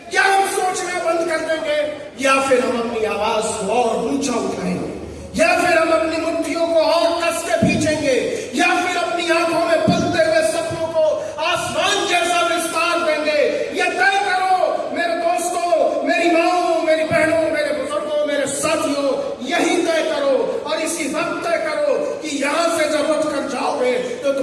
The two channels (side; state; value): both; identical; correlation 1.00